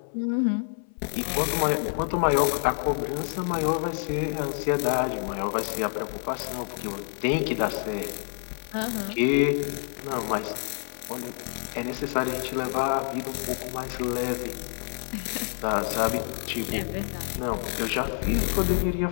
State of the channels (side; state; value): right; silent; 59 dB below the other